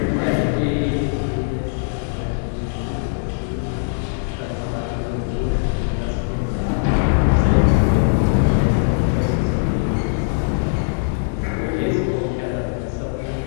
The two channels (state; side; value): silent; right; 62 dB below the other